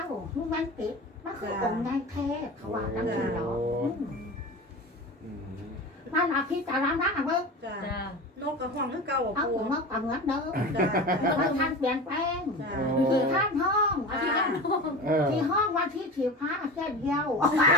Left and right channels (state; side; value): normal; both; correlation 0.31